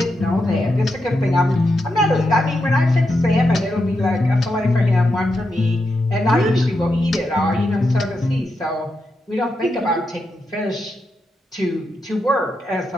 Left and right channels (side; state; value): both; normal; correlation 0.85